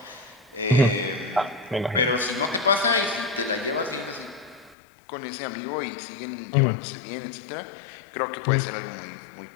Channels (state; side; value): drops out; right; at 4.8 s